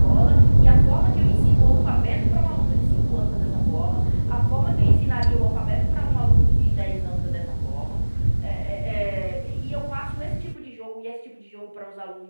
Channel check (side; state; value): both; inverted; correlation -1.00